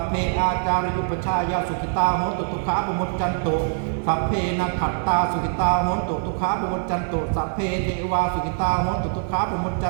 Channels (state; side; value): silent; left; 63 dB below the other